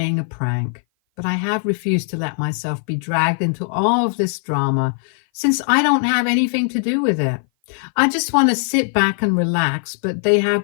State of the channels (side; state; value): right; silent; 57 dB below the other